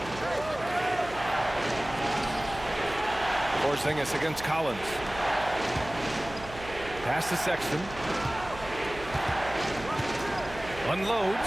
Porzingis against Collins. Pass to Sexton.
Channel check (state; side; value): noise; right; hum, 14 dB below the sound